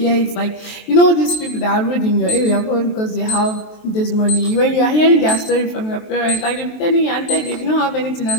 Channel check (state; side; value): late; right; 23 ms